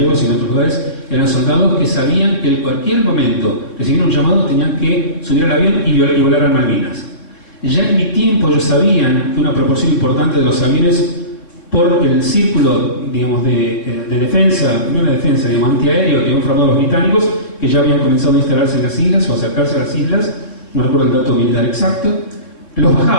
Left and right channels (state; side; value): late; right; 3.7 ms